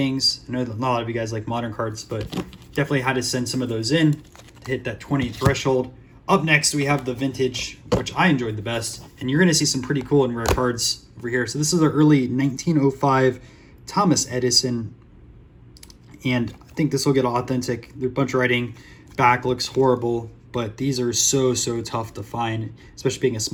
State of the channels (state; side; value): identical; both; correlation 1.00